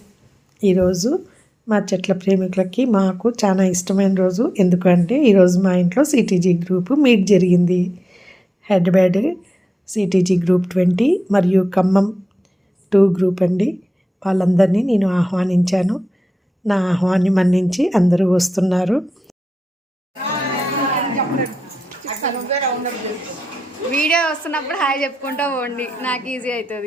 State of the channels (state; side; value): normal; both; correlation 0.92